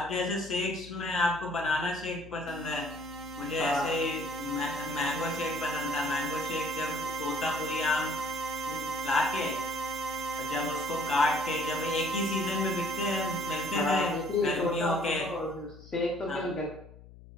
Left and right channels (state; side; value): noise; left; hum, 19 dB below the sound